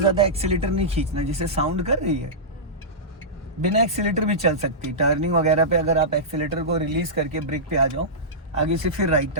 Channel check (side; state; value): both; normal; correlation -0.16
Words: एक्सीलेटर नहीं खींचना, जैसे साउंड कर रही है। बिना एक्सीलेटर भी चल सकती। टर्निंग वगैरह पे अगर आप एक्सीलेटर को रिलीज करके ब्रेक पे आ जाओ, आगे से फिर राइट